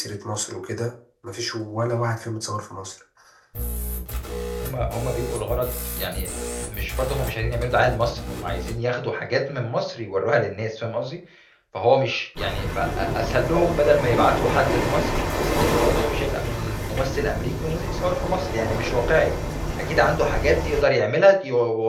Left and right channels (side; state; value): both; identical; correlation 1.00